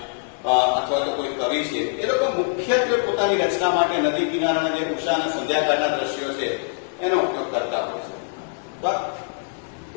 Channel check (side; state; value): right; silent; digital silence